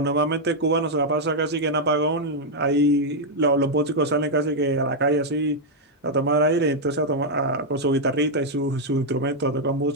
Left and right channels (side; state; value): both; normal; correlation -0.02